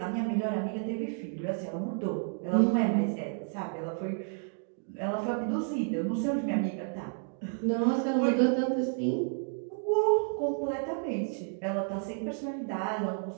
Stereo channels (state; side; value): silent; left; 57 dB below the other